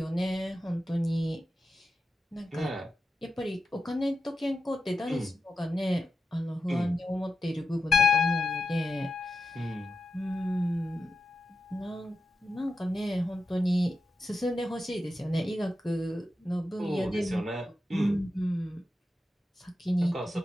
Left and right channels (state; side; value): normal; both; correlation 0.89